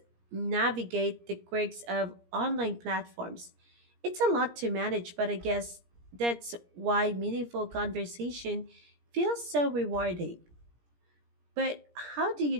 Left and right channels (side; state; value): left; late; 17 ms